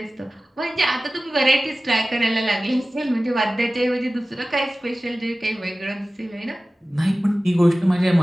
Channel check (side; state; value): both; normal; correlation 0.97